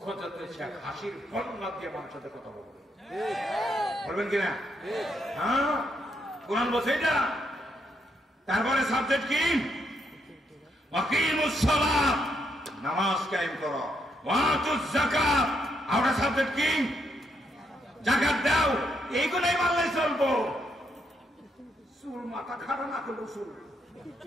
যত হাসির বন্যা দিয়ে মানুষের সাথে কথা বলবে, বলবেন কিনা? হ্যাঁ, কোরআন বলছে এটা। তারপরে সাবজেক্ট কি? ওয়াকিমুস সালাত, নামাজ কায়েম করো, ওয়াতুজ যাকাত, আর সাবজেক্ট কি? যাকাত দাও। এইগুলাই মানলে চলবো। চুল মাথা খারাপ না করলো চুল,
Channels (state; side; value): normal; both; correlation 0.77